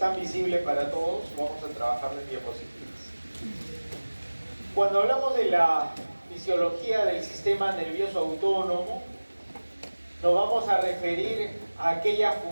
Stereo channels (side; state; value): both; inverted; correlation -1.00